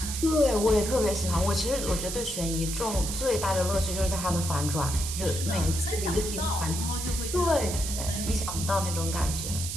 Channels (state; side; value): noise; right; hiss, 5 dB below the sound